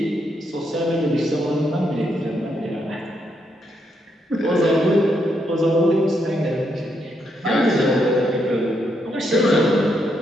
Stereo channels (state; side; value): normal; both; correlation 0.78